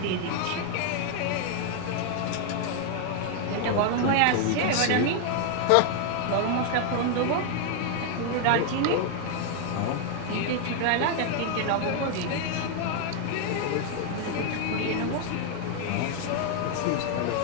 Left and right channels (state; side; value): different; both; correlation 0.00